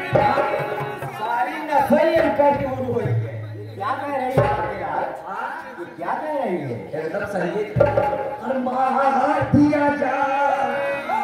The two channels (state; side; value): identical; both; correlation 1.00